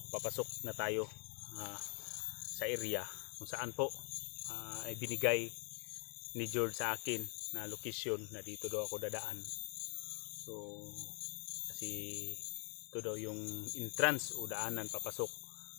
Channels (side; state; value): right; quieter; 38.9 dB